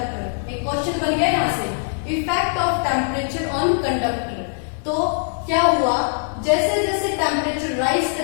एक क्वेश्चन बन गया यहाँ से, effect of temperature on conductor, तो क्या हुआ, जैसे जैसे टेम्परेचर राइज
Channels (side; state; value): right; silent; 60 dB below the other